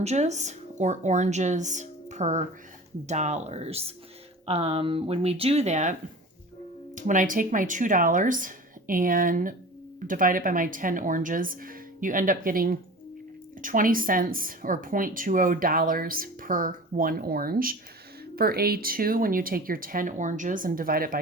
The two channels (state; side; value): normal; both; correlation 0.37